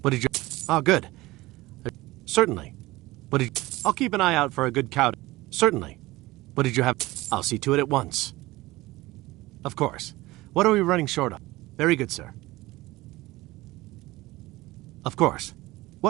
What did you... Oh, good. Certainly. What did... I'll keep an eye out for a good cow. Certainly. What did you have... I'll see to it at once. Of course. What are we running short of? Very good, sir. Of course.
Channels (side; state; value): left; quieter; 19.4 dB